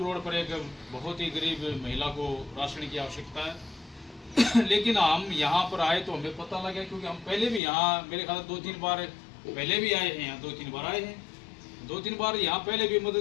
रोड पर एक बहुत ही गरीब महिला को राशन की आवश्यकता है। लेकिन हम यहाँ पर आए तो हमें पता लगा, क्योंकि हम पहले भी यहाँ मेरे ख्याल 2-3 बार पहले भी आए हैं, यहाँ 2-3 बार आए हैं, 2-3 बार यहाँ पहले भी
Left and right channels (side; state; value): right; drops out; at 7.6 s